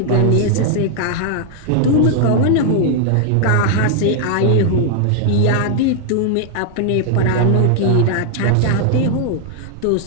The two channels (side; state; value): both; different; correlation 0.00